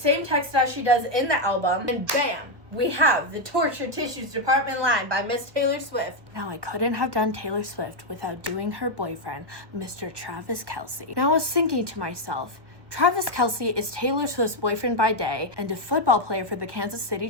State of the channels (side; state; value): left; late; 1.3 ms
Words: text as she does in the album. And bam! We have the Tortured Tissues Department line by Miss Taylor Swift. Now, I couldn't have done Taylor Swift without doing her boyfriend, Mr. Travis Kelce. Now, I was thinking to myself, Travis Kelce is Taylor Swift's boyfriend by day and a football player for the Kansas City